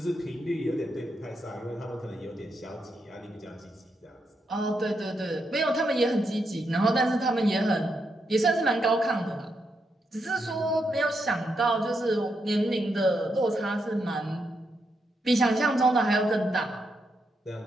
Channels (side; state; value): both; normal; correlation 0.82